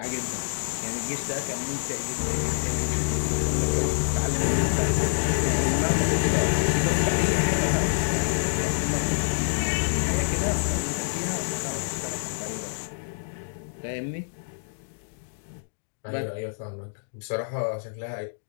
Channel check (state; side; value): silent; right; digital silence